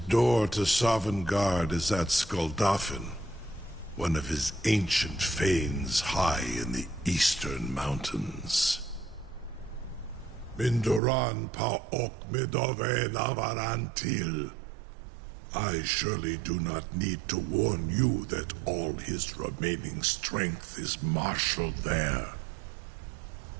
door to Sovngarde is at Skuldafn, one of his ancient fanes high in the eastern mountains. Mindoran pa ok midove navarantil. I surely do not need to warn you that all his remaining strength is marshaled there.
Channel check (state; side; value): drops out; left; at 11.0 s